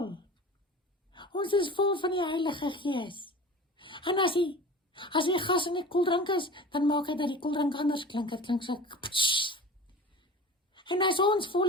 Ons is vol van die Heilige Gees. En as die gas in die koeldrank is, dan maak hy dat die koeldrank anders klink. Het klink so, pssst. En as ons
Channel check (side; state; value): both; normal; correlation 0.37